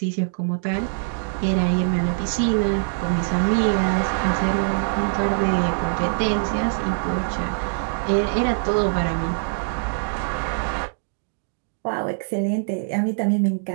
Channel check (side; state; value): left; silent; digital silence